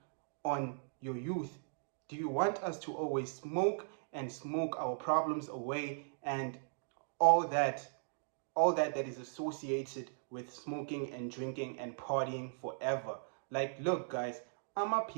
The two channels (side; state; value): left; silent; digital silence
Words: on your youth? Do you want us to always smoke and smoke our problems away and all that that is associated with smoking and drinking and partying forever? Like, look, guys,